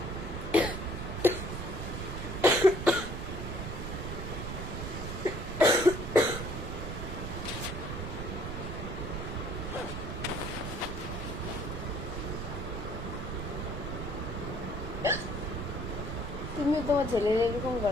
তুমি তোমার ছেলের এরকম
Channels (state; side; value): noise; right; rumble, 5 dB below the sound